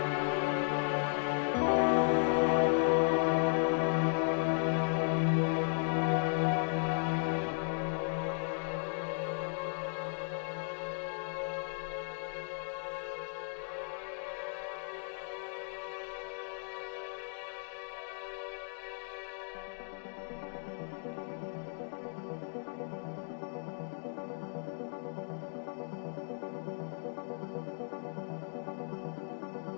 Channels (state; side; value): silent; right; 54 dB below the other